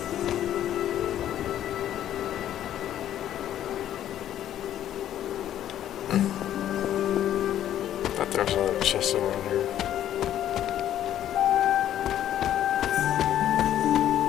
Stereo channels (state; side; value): quieter; right; 11.4 dB